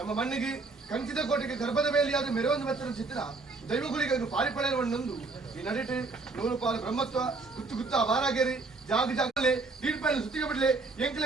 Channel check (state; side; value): quieter; left; 3.8 dB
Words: ಮಣ್ಣಿಗೆ ಕಂಚಿದ ಕೋಟೆಗೆ ಗರ್ಭದ ಬೇಲಿಯಾದ ಮೆರವೊಂದು ವಚನ ಚಿತ್ತನ ದೈವಗುಳಿಗೆ ಪಾರಿಪಳೆ ಮಣ್ಣೊಂದು ಈ ನಡೆಟಿ ನೂರು ಪಾಲು ಬ್ರಹ್ಮತ್ವ ಗುತ್ತು ಗುತ್ತ ಅವಾರಾಗೇರಿ ಜಾಗ ಜಾಗಲೆ ದೀಡ್ಪೈನ ಸುತ್ತಿಗೆ ಬಿಡ್ಲೆ